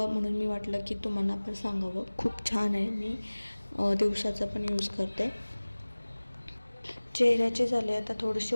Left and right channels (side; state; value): both; inverted; correlation -1.00